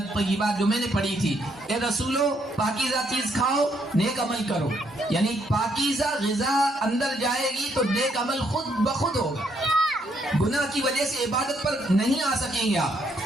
جو میں نے پڑھی تھی، اے رسولو پاکیزہ چیز کھاؤ، نیک عمل کرو، یعنی پاکیزہ غذا اندر جائے گی تو نیک عمل خود بخود ہوگا، گناہ کی وجہ سے عبادت پر نہیں آ سکیں گے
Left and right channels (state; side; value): normal; both; correlation 0.72